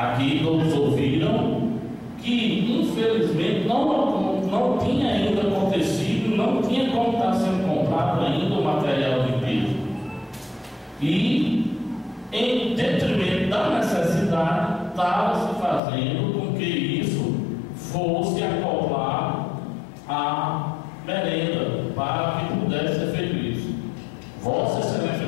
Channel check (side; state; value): right; drops out; at 15.8 s